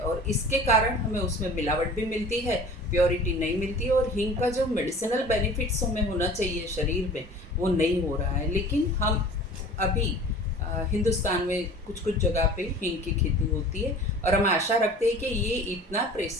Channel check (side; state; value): both; normal; correlation 0.43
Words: इसके कारण हमें उसमें मिलावट भी मिलती है, प्योरिटी नहीं मिलती और हींग का जो मेडिसिनल बेनिफिट्स हमें होना चाहिए शरीर में वो नहीं हो रहा है। लेकिन हम अभी हिंदुस्तान में कुछ कुछ जगह पे हींग की खेती होती है और हम आशा रखते हैं कि ये इतना